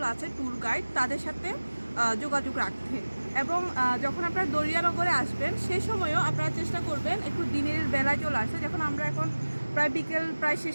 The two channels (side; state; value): both; inverted; correlation -1.00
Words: আছে, ট্যুর গাইড, তাদের সাথে যোগাযোগ রাখতে। এবং যখন আপনারা দরিয়ানগরে আসবেন সেই সময়ও আপনারা চেষ্টা করবেন একটু দিনের বেলায় চলে আসতে। যখন আমরা এখন প্রায় বিকেল প্রায়